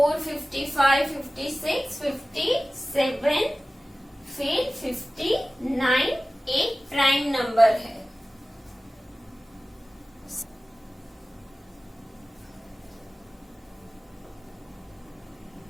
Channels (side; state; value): both; normal; correlation 0.96